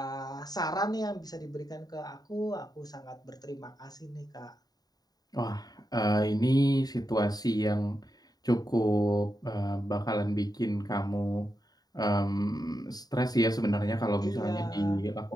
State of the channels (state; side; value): late; right; 0.19 ms